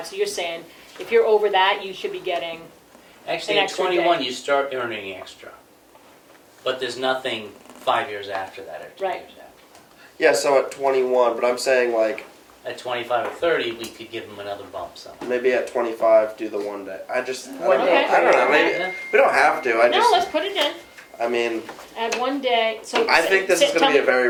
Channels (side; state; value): both; identical; correlation 1.00